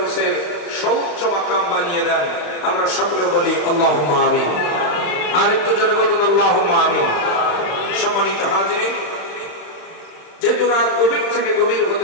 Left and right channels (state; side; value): late; right; 35 ms